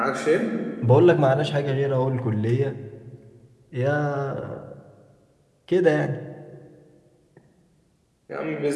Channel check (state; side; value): identical; both; correlation 1.00